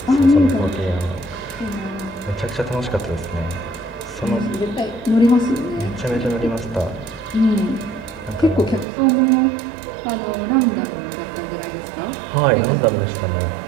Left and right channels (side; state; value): left; drops out; at 8.8 s